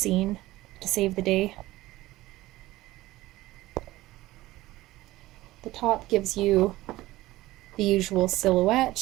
to save the day. The top gives you the usual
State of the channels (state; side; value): quieter; left; 17.5 dB